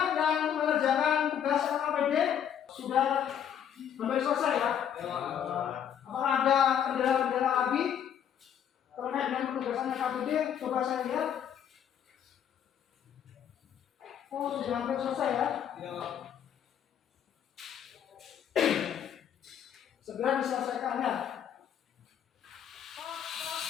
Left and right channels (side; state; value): right; quieter; 9.1 dB